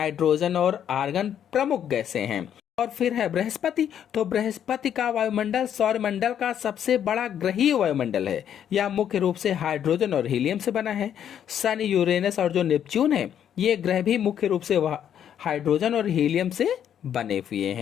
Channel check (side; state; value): right; quieter; 9.4 dB